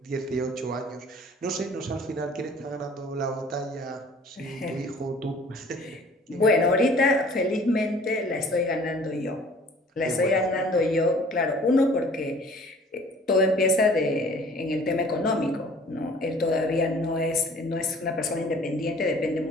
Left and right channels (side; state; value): both; normal; correlation 0.51